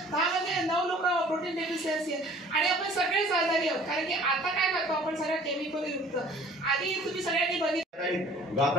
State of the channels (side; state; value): both; normal; correlation 0.52